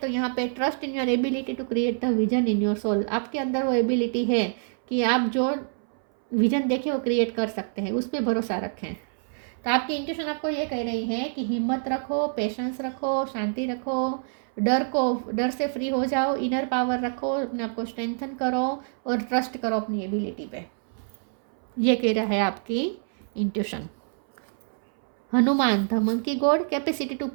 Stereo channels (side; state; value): left; silent; 61 dB below the other